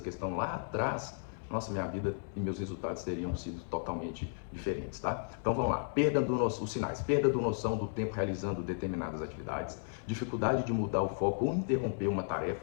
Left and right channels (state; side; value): silent; right; 55 dB below the other